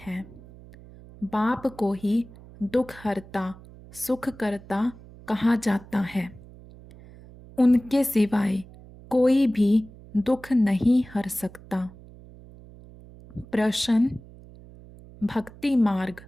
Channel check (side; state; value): right; noise; hum, 20 dB below the sound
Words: बाप को ही दुख हरता सुख करता कहा जाता है। उनके सिवाय कोई भी दुख नहीं हर सकता। प्रश्न: भक्ति मार्ग